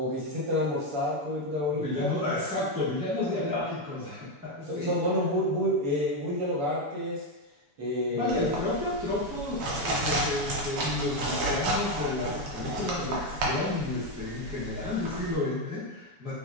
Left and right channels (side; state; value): left; late; 7.0 ms